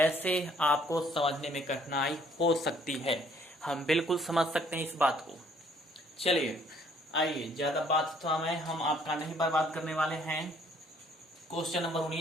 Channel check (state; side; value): normal; both; correlation 0.62